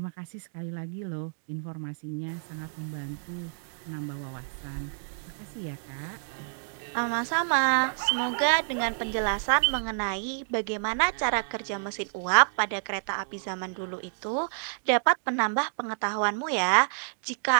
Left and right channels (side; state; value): left; silent; digital silence